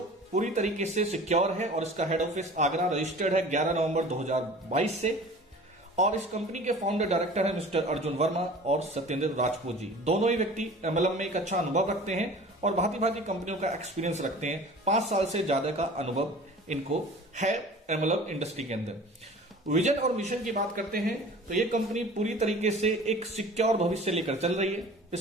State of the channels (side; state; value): both; normal; correlation 0.42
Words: पूरी तरीके से सिक्योर है और इसका हेड ऑफिस आगरा रजिस्टर्ड है 11 नवंबर 2022 से। और इस कंपनी के फाउंडर डायरेक्टर है मिस्टर अर्जुन वर्मा और सत्येंद्र राजपूत जी। दोनों ही व्यक्ति एमएलएम में एक अच्छा अनुभव रखते हैं और भांति भांति कंपनियों का एक्सपीरियंस रखते हैं। 5 साल से ज्यादा का अनुभव इनको है एमएलएम इंडस्ट्री के अंदर। विजन और मिशन की बात करते हैं तो ये कंपनी पूरी तरीके से एक सिक्योर भविष्य लेकर चल रही है।